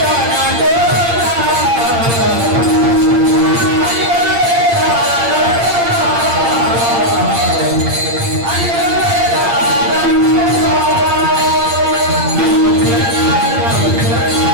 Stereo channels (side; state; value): left; late; 8.7 ms